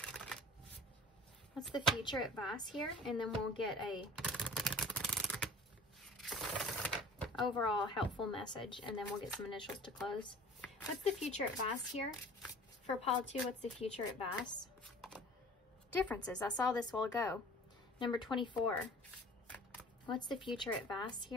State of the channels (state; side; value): normal; both; correlation 0.46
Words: What's the future advice here? And then we'll get a overall helpful message, and then we'll get some initials to close. What's the future advice here? For Paul 2, what's the future advice? Differences. I saw this a while ago. Number 24. What's the future advice